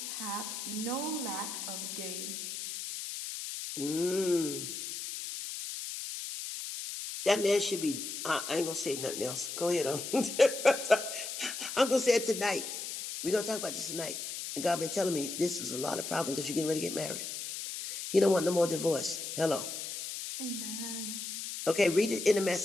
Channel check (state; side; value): noise; left; hiss, 6 dB below the sound